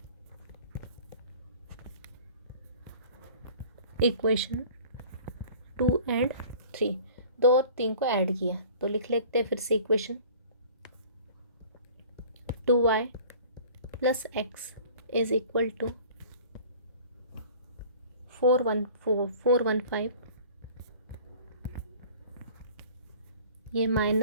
इक्वेशन 2 एंड 3, 2 और 3 को ऐड किया तो लिख लेते हैं फिर से equation 2y plus x is equal to 415, ये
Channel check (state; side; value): inverted; both; correlation -0.45